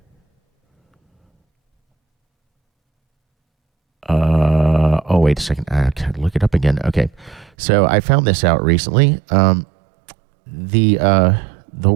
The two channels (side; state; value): left; drops out; at 7.5 s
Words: Oh, wait a second. I gotta look it up again. Okay, so I found this out recently. The